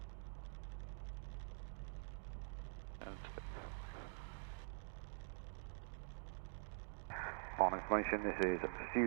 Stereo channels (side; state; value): left; silent; digital silence